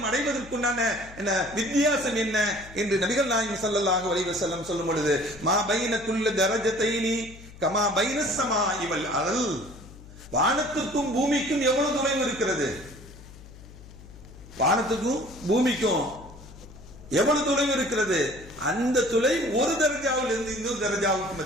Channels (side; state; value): left; noise; hum, 18 dB below the sound